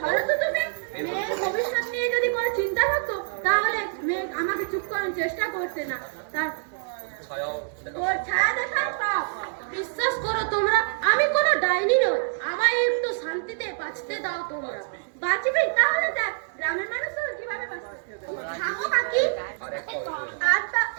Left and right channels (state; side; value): silent; left; digital silence